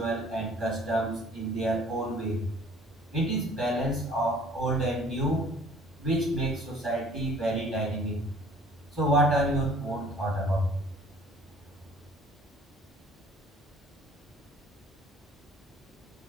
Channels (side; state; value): both; normal; correlation 0.53